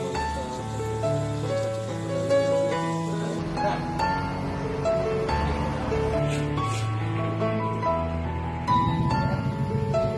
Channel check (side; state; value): both; identical; correlation 1.00